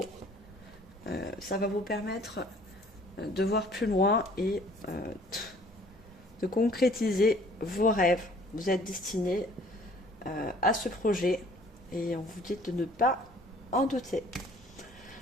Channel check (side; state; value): both; normal; correlation 0.55